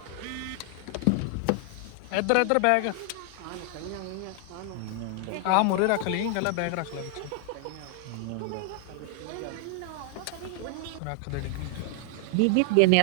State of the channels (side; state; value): both; different; correlation 0.00